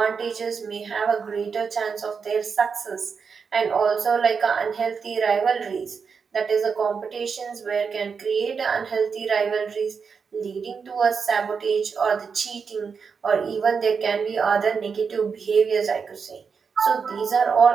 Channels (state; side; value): quieter; left; 5.8 dB